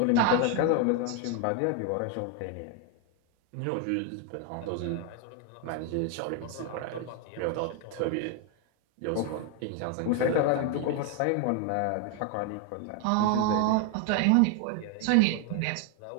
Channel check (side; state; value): both; different; correlation 0.01